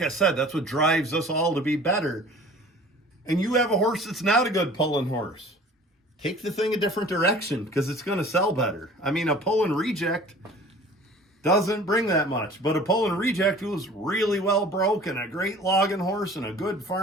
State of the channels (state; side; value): normal; both; correlation 0.46